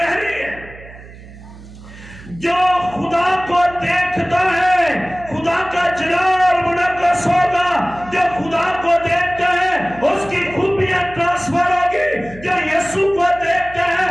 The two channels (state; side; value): noise; right; hum, 18 dB below the sound